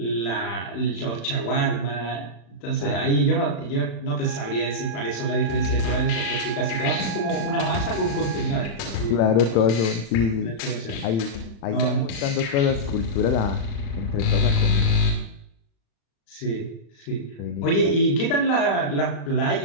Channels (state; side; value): late; right; 35 ms